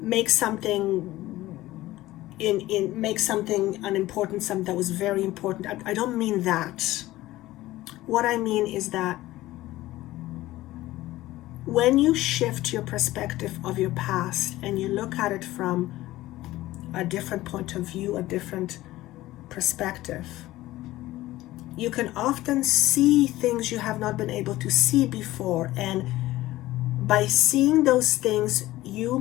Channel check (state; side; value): quieter; right; 16.7 dB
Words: something unimportant, something that was very important. I don't mean that. What I mean is that when you shift your perspective of your past and you look at it from a different point of view, a different perspective, you can often see things you have not been able to see before. And by seeing those things, you